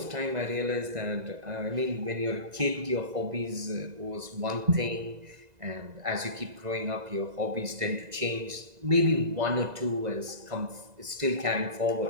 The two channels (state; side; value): late; left; 2.0 ms